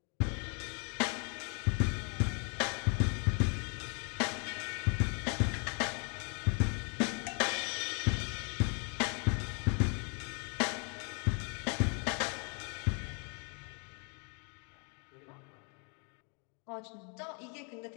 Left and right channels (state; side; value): quieter; right; 38.1 dB